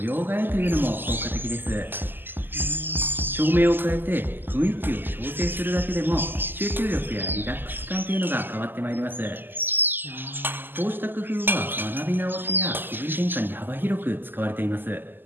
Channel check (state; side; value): late; left; 0.093 ms